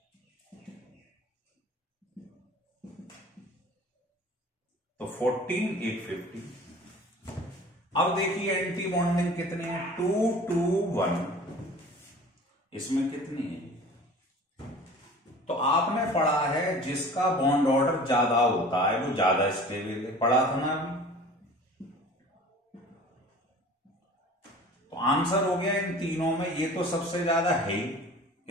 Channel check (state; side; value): normal; both; correlation 0.43